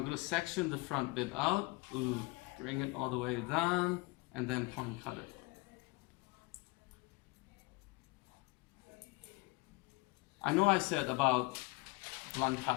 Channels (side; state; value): right; quieter; 24.6 dB